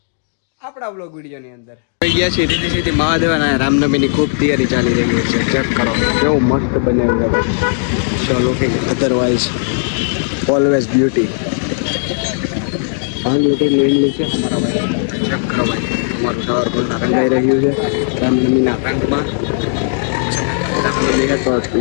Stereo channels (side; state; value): right; silent; digital silence